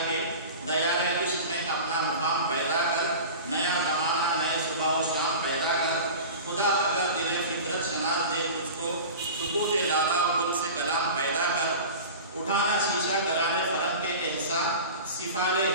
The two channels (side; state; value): both; inverted; correlation -0.34